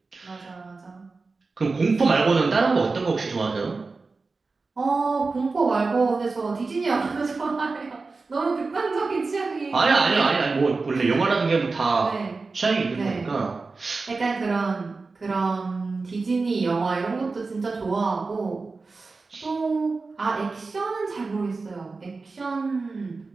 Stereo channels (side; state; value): left; quieter; 4.0 dB